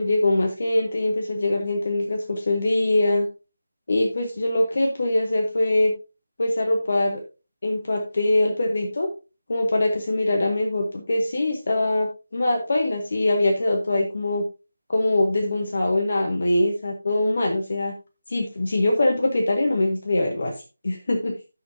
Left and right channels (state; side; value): inverted; both; correlation -0.94